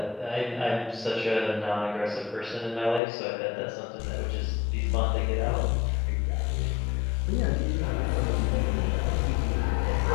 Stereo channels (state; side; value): drops out; right; at 3.0 s